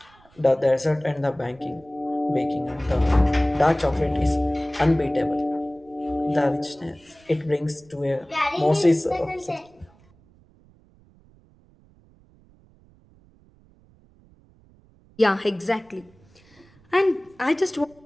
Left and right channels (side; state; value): right; noise; rumble, 29 dB below the sound